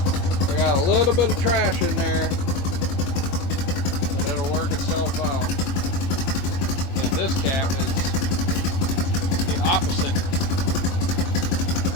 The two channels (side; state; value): right; late; 21 ms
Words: I got a little bit of trash in there, but it'll work itself out. And this cap is the opposite